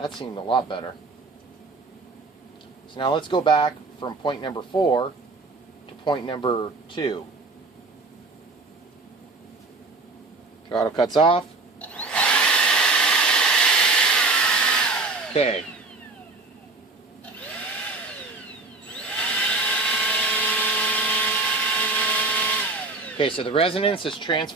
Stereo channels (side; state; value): left; quieter; 3.5 dB